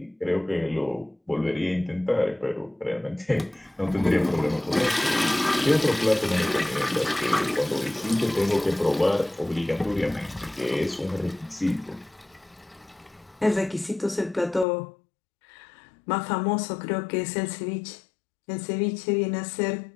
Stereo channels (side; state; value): right; drops out; at 14.7 s